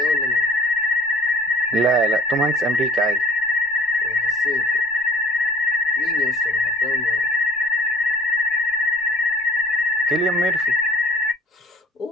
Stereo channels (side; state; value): both; normal; correlation 0.51